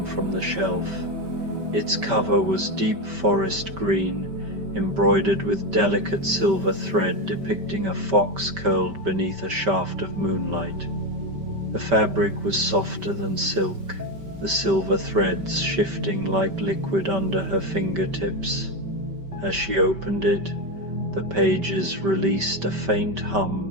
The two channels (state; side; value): late; left; 5.1 ms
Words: from the shelf. Its cover was deep forest green, embroidered with delicate silver thread depicting a fox curled beneath a shaft of moonlight. The fabric was softer than silk, the silver threads shifting like liquid under her fingertips. As she opened it, the pages released a faint